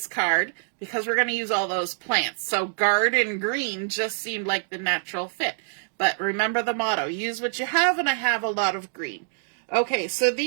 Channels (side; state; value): left; silent; digital silence